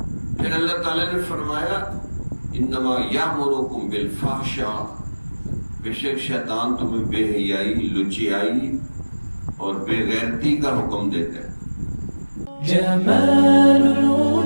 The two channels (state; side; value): inverted; both; correlation -1.00